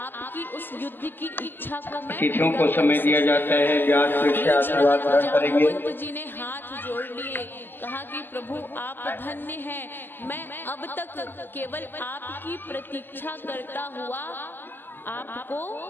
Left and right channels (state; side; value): late; right; 0.093 ms